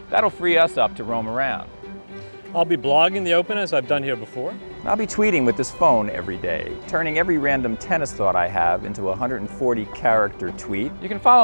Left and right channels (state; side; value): inverted; both; correlation -1.00